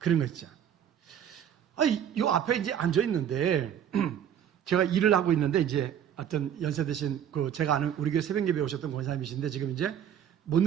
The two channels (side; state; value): left; quieter; 9.3 dB